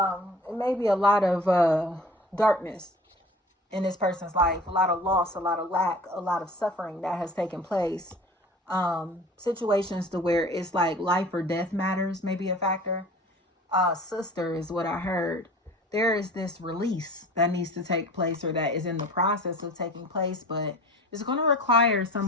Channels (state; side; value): normal; both; correlation 0.42